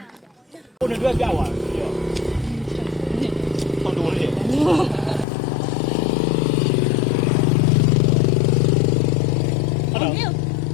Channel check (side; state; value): right; drops out; at 5.2 s